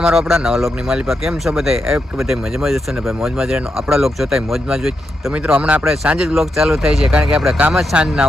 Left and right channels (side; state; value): both; normal; correlation 0.85